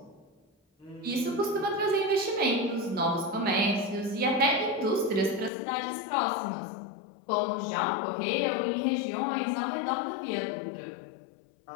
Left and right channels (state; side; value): drops out; right; at 5.5 s